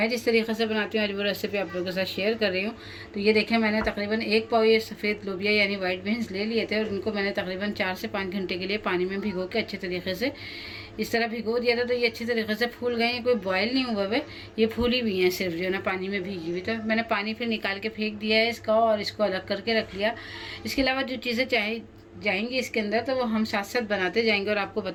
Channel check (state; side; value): identical; both; correlation 1.00